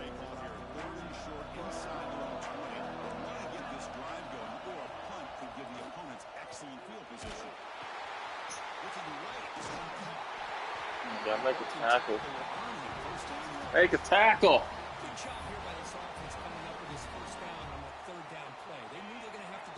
call here. Third and short inside their own 20. They want to get this drive going, or a punt could give the opponents excellent field position. Looking right, this one caught. Yeah, make a tackle. First down. Make a tackle. Good job here by this offense coming up with this first down on that third down play. They knew they were going to have to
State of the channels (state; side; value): identical; both; correlation 1.00